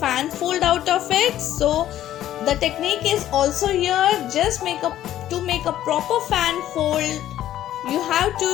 fold out of it. So the technique is also here, just to make a proper fan fold you have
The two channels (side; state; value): right; quieter; 12.5 dB